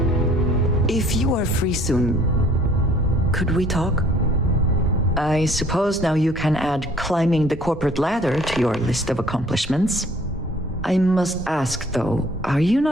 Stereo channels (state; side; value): normal; both; correlation 0.56